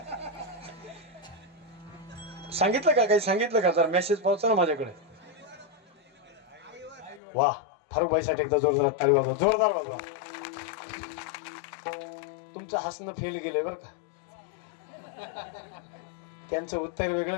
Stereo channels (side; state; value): right; drops out; at 7.2 s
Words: सांगितलं का काही सांगितलं का? जर मेसेज पावचा ना माझ्याकडे. वा फारुख भाईसाठी एकदा जोरदार टाळी वाजवा, जोरदार वाजवा. तुमचं हसणं फेल गेलंय बरं का. त्यांचं उत्तर